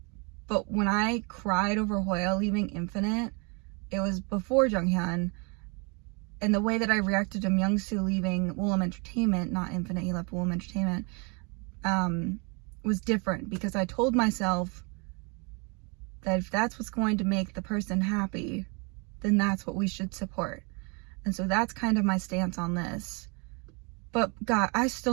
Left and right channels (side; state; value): left; quieter; 32.2 dB